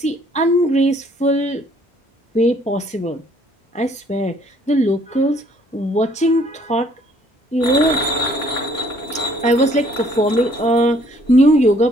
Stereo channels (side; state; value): both; normal; correlation 0.62